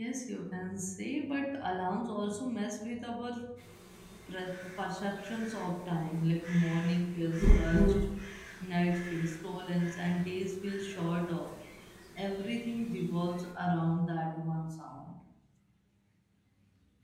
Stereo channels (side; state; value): both; identical; correlation 1.00